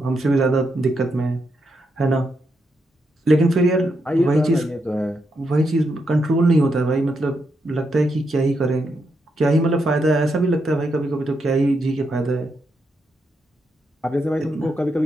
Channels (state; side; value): normal; both; correlation 0.82